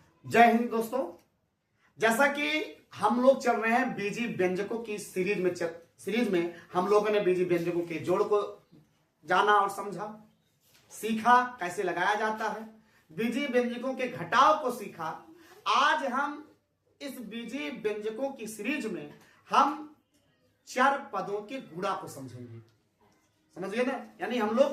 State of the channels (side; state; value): both; identical; correlation 1.00